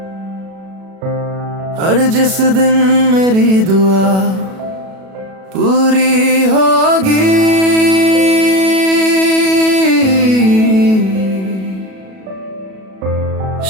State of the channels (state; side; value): late; left; 37 ms